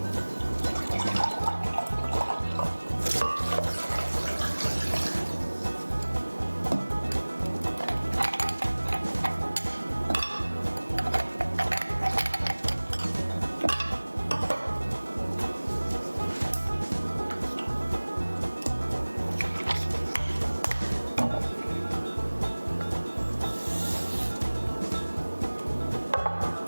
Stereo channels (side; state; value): both; inverted; correlation -1.00